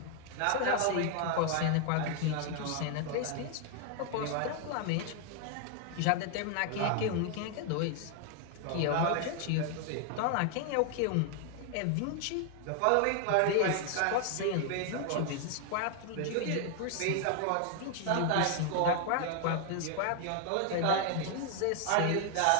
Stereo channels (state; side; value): different; both; correlation 0.00